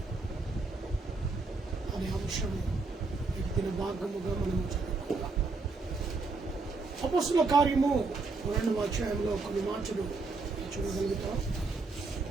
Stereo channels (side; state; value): left; quieter; 3.9 dB